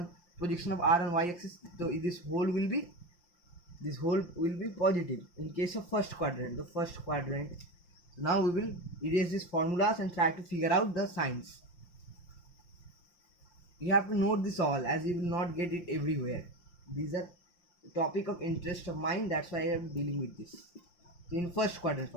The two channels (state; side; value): late; right; 5.7 ms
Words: Projection of R on y-axis. So this whole will be positive in case of first quadrant. The first quadrant. So now we will erase these formulas and try to figure out the signs. You have to note this all, as you will not get it everywhere. These are topic of interest of mine, that's why I am dealing with this. So in first quadrant,